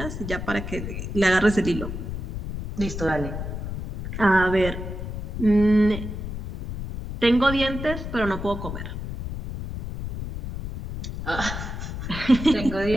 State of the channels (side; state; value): left; noise; rumble, 6 dB below the sound